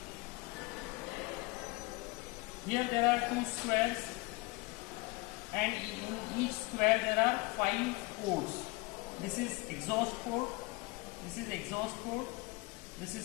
Here there are two squares, and in each square there are 5 ports. This is exhaust port, this is exhaust port, this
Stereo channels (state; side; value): quieter; right; 24.0 dB